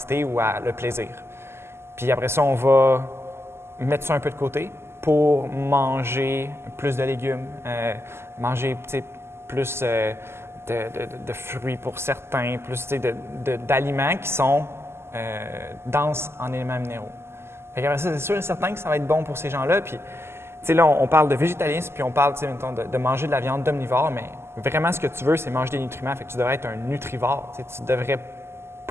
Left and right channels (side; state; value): left; late; 0.12 ms